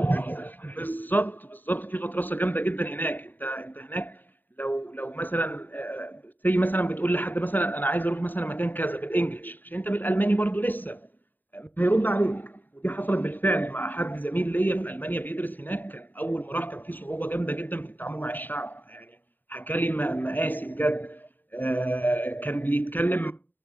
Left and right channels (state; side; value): late; right; 0.090 ms